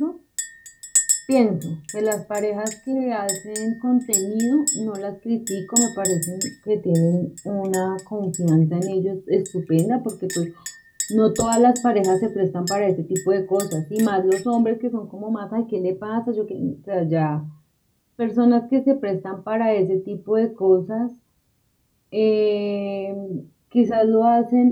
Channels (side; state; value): both; identical; correlation 1.00